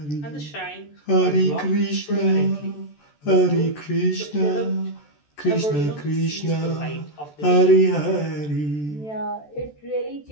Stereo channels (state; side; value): late; right; 14 ms